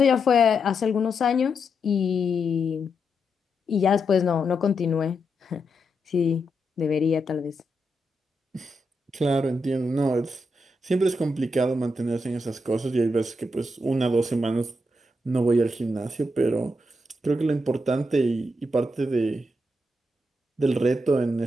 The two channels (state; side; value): normal; both; correlation 0.83